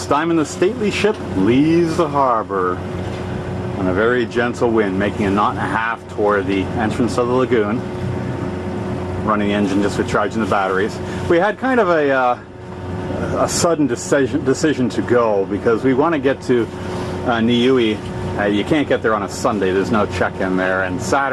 Diamond, the stately ship, leaves the harbor on a very gentle wind, making a knot and a half toward the entrance of the lagoon, running the engine just with charging the batteries. We had kind of a sudden decision to go because we want to get to Niue. You can't get there on a Sunday, there's no check-in there, and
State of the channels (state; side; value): identical; both; correlation 1.00